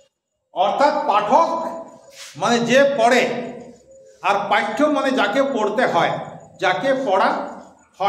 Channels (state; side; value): identical; both; correlation 1.00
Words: অর্থাৎ পাঠক মানে যে পড়ে, আর পাঠ্য মানে যাকে পড়তে হয়, যাকে পড়া